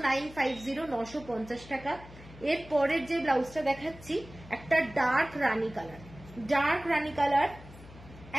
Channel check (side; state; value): left; noise; hum, 18 dB below the sound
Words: 950, 950 টাকা। এর পরের যে ব্লাউজটা দেখাচ্ছি একটা ডার্ক রানী কালার, ডার্ক রানী কালার,